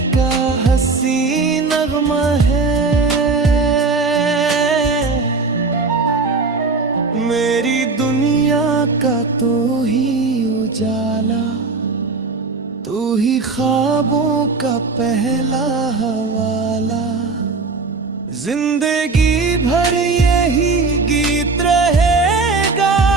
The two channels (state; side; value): quieter; left; 4.1 dB